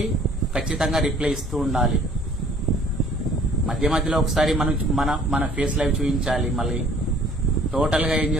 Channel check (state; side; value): normal; both; correlation 0.55